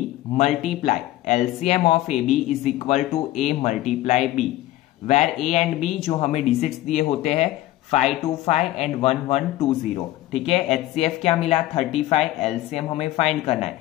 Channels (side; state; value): right; quieter; 15.6 dB